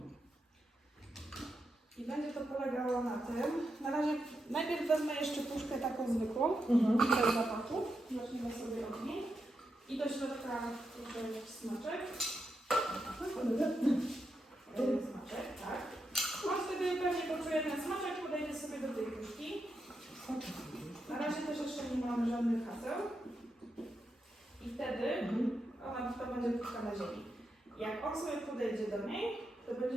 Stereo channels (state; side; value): normal; both; correlation 0.85